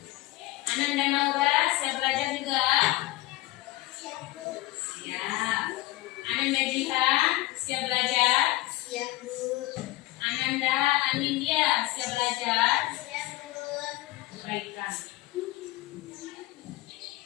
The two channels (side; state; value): right; quieter; 18.2 dB